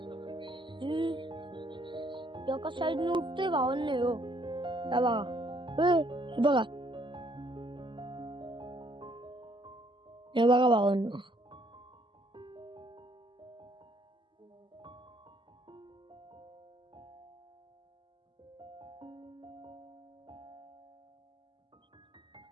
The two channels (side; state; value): left; late; 0.24 ms